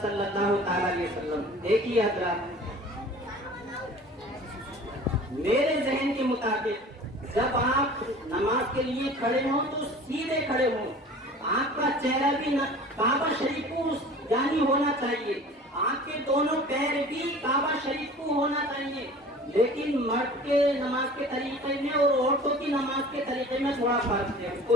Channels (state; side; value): normal; both; correlation 0.43